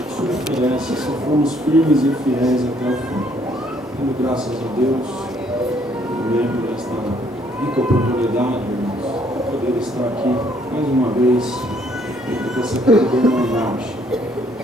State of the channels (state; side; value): normal; both; correlation 0.66